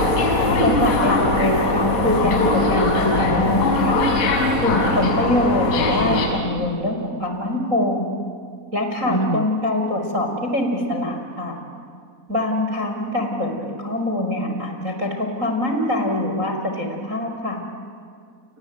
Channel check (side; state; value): left; late; 4.1 ms